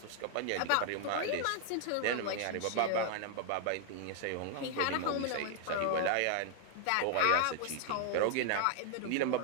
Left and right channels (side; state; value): both; different; correlation 0.00